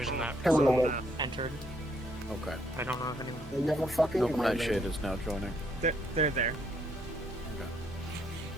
in that Hello. zone entered. Okay. I don't know if anyone. Nope, Nightshade is now joining. They're there.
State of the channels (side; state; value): both; normal; correlation 0.71